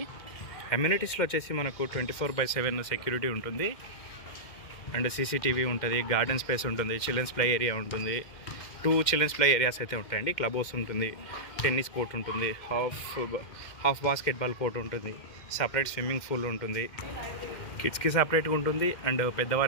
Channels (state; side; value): late; right; 2.1 ms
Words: అమ్యూనిటీస్లో వచ్చేసి మనకు 24/7 సెక్యూరిటీ ఉంటుంది అండ్ CCTV ఉంటుంది, గార్డెన్ స్పేస్ ఉంటుంది, చిల్డ్రన్స్ ప్లే ఏరియా ఉంటుంది, 2 చిల్డ్రన్స్ ప్లే ఏరియాస్ అయితే ఉంటాయండి. క్లబ్ హౌస్ ఉంటుంది, టెన్నిస్ కోర్ట్ ఉంటుంది, హాఫ్ బాస్కెట్బాల్ కోర్ట్ ఉంటుంది, సపరేట్ స్విమ్మింగ్ పూల్ ఉంటుంది, కిడ్స్కి సపరేట్గా ఉంటుంది అండ్